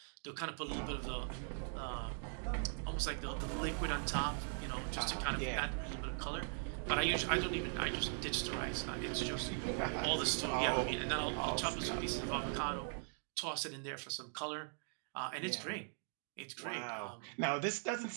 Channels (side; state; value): left; silent; 51 dB below the other